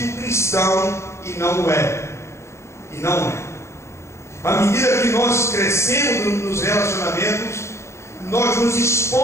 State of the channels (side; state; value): right; late; 0.13 ms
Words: cristão e não é. E não é. À medida que nós crescemos nos relacionamentos, nós nos